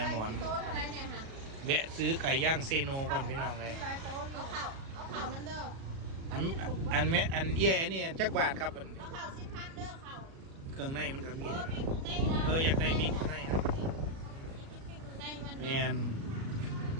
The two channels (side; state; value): left; late; 37 ms